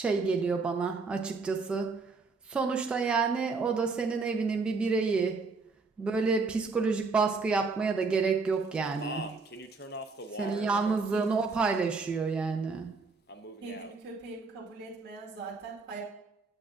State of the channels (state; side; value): quieter; left; 4.2 dB